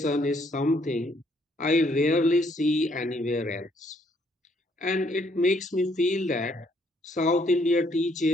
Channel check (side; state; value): both; normal; correlation 0.68